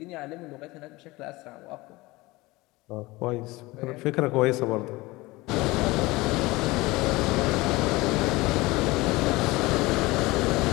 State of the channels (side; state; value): right; quieter; 21.4 dB